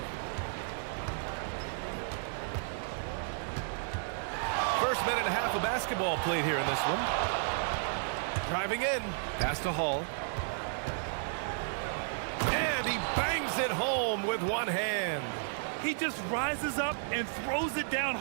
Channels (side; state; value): left; silent; digital silence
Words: First minute and a half of basketball played here in this one. Driving in, pass to Hall. And he bangs it home with one hand. He just rises up and throws it down